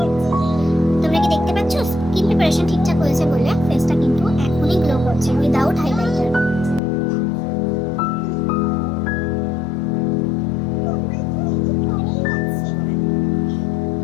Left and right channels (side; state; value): right; drops out; at 6.8 s